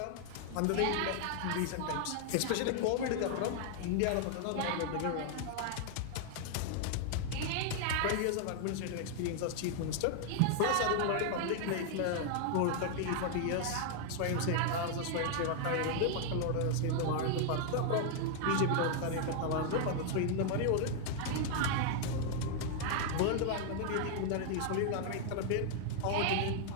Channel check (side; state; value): both; different; correlation 0.00